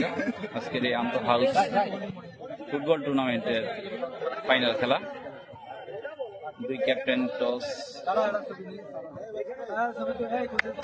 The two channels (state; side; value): identical; both; correlation 1.00